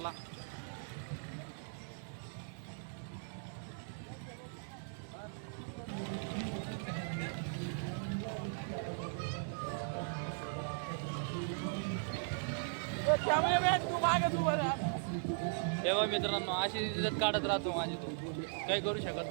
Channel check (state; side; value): silent; left; digital silence